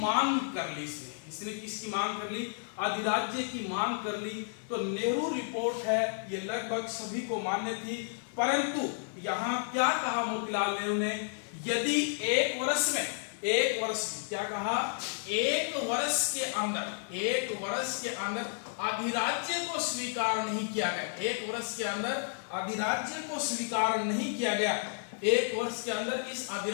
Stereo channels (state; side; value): silent; right; 56 dB below the other